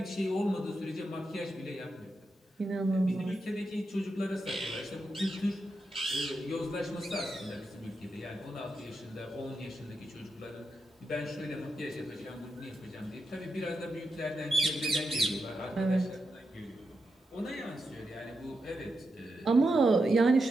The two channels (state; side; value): normal; both; correlation 0.87